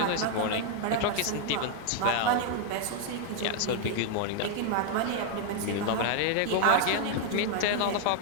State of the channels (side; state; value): both; different; correlation 0.00